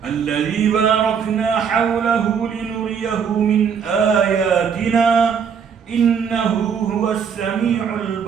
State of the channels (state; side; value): quieter; left; 7.0 dB